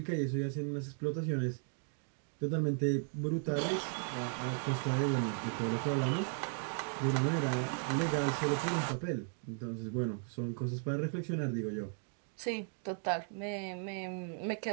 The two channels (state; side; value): silent; left; 54 dB below the other